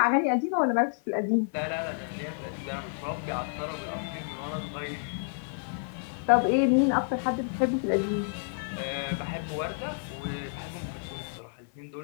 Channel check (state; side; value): silent; right; 58 dB below the other